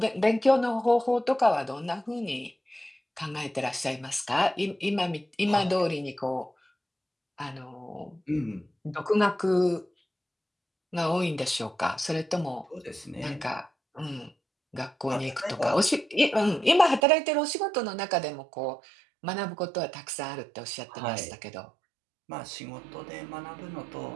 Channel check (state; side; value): drops out; left; at 17.0 s